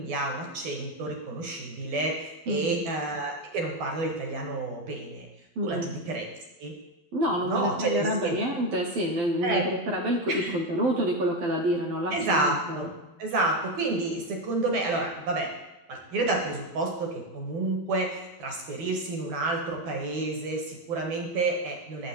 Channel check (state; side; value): late; left; 12 ms